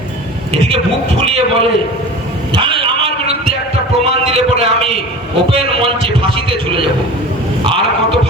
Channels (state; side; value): normal; both; correlation 0.36